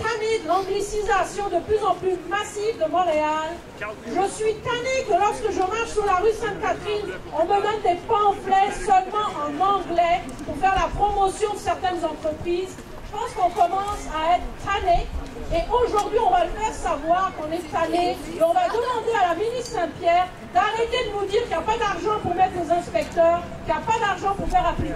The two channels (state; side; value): identical; both; correlation 1.00